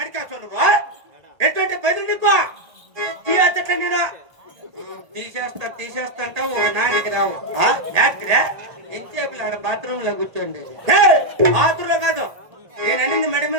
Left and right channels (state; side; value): late; left; 1.8 ms